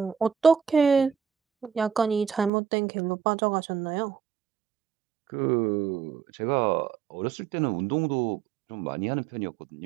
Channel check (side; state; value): left; drops out; at 2.5 s